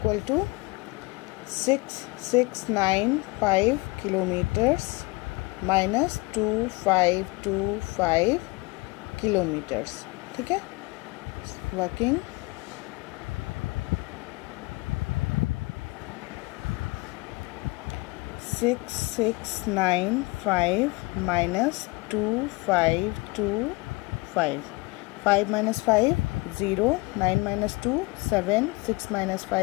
to 6,695 kilometers minus 2,525 kilometers, ठीक है। Working six 695 minus 2,525, 5 minus 5 0, 9 minus 2 7, 6 minus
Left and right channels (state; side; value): quieter; right; 25.1 dB